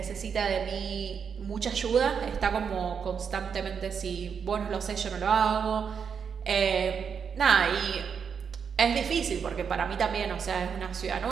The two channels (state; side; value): quieter; left; 6.7 dB